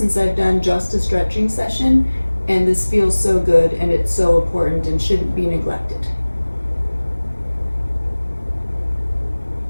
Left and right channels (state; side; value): inverted; both; correlation -1.00